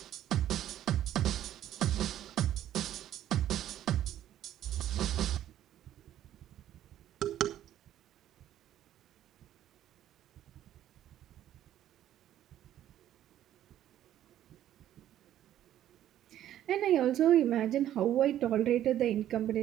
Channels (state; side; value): quieter; left; 11.9 dB